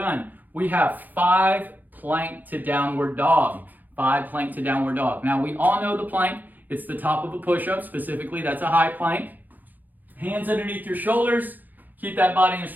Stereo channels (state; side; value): late; left; 0.084 ms